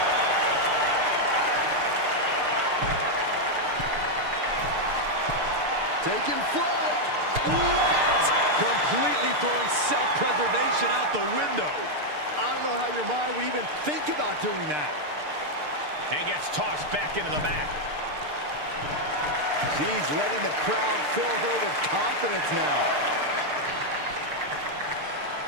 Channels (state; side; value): late; left; 6.7 ms